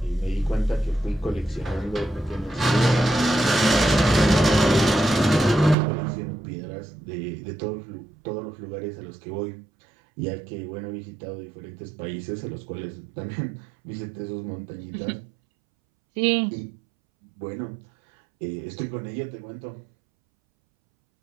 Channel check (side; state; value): left; drops out; at 5.8 s